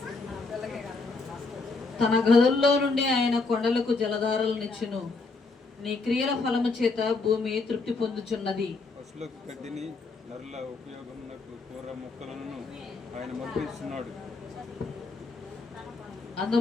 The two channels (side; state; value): right; quieter; 3.9 dB